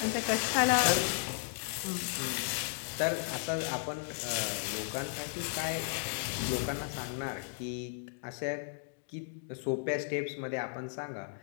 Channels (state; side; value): silent; right; digital silence